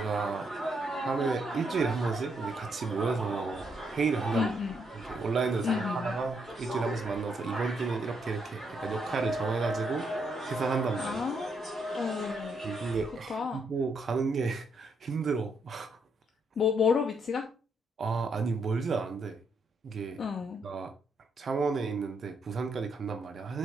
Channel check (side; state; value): both; normal; correlation 0.76